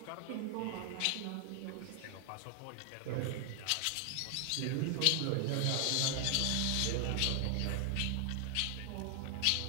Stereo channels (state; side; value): different; both; correlation 0.00